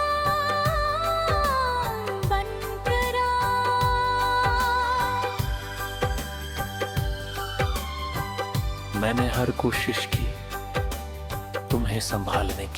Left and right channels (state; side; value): identical; both; correlation 1.00